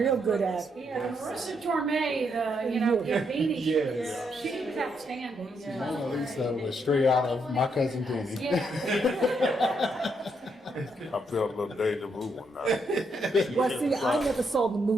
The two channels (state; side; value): normal; both; correlation 0.77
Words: good at it. Yeah, the Marissa Torme, Gambini, Yes. she was outstanding. Mona Lisa was straight out of My Cousin Vinny. Yeah. I felt a little deja vu one night. Well, see, I never saw the